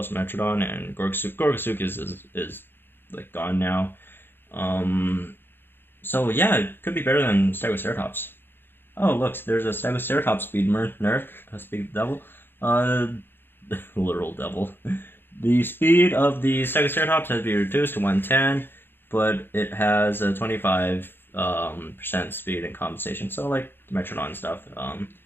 and Gorgosuchus is like gone now. So yeah, it could be better than Stegoceratops. Oh look, there's a Stegoceratops speed nerf, speed devil, literal devil. The speed of the Stegoceratops has been reduced to 110, but it has a 25% speed and compensation. So like the Metrodon stuff,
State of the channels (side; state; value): right; late; 0.10 ms